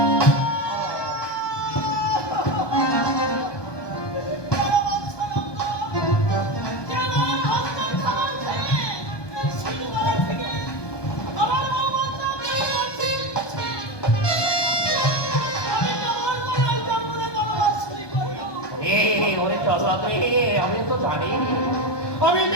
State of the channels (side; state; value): right; late; 1.2 ms